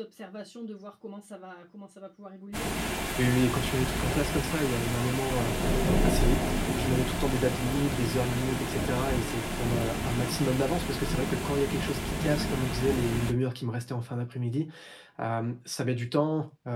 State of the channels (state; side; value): identical; both; correlation 1.00